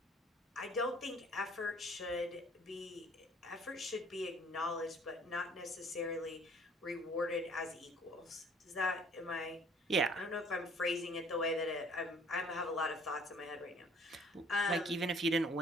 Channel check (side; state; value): both; normal; correlation 0.56